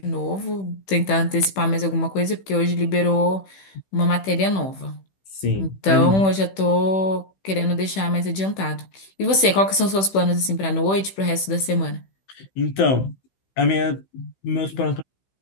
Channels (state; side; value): late; right; 15 ms